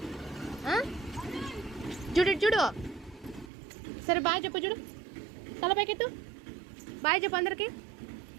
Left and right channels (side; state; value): left; drops out; at 3.5 s